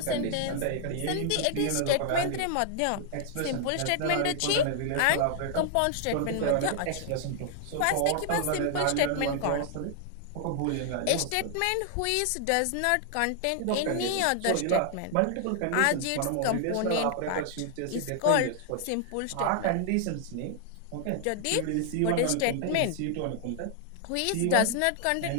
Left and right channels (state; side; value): different; both; correlation 0.00